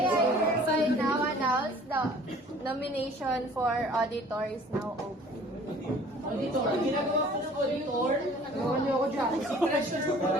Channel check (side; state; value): both; normal; correlation 0.51